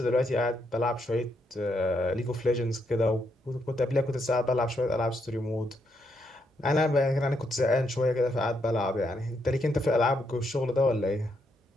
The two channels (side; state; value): both; normal; correlation 0.77